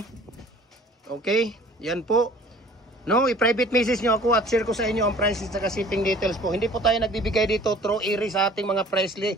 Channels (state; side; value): normal; both; correlation 0.50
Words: Okay, yan po. No, i-private message nyo ako at share ko sa inyo ang prices at saka shipping details po. Hindi po tayo nagbibigay dito through iri sa ating mga price